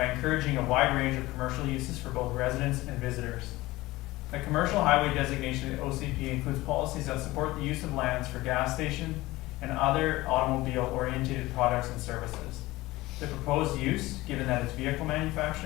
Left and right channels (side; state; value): right; quieter; 19.0 dB